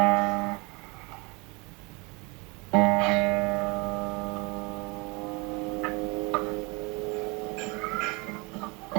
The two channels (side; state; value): left; quieter; 27.5 dB